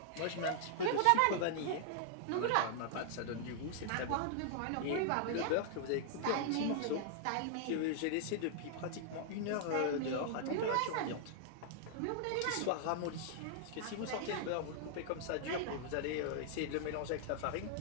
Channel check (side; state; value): both; different; correlation -0.01